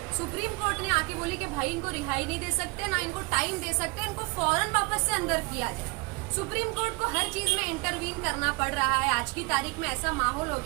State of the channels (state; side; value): quieter; left; 28.3 dB